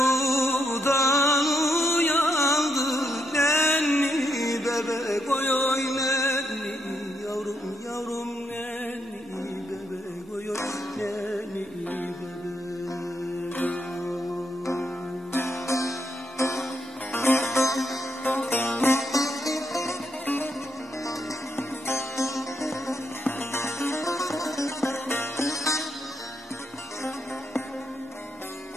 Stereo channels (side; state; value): both; normal; correlation 0.79